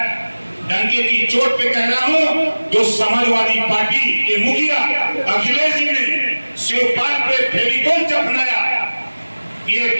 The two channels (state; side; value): inverted; both; correlation -1.00